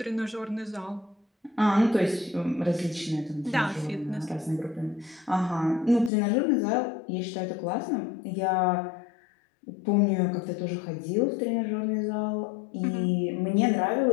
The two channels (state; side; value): drops out; right; at 6.1 s